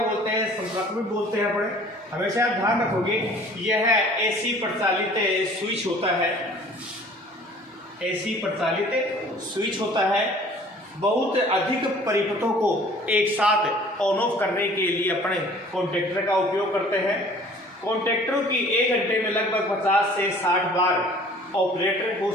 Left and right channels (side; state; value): both; normal; correlation 0.50